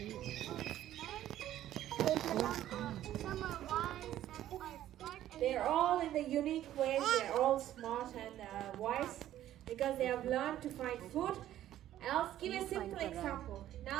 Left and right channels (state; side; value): quieter; left; 12.6 dB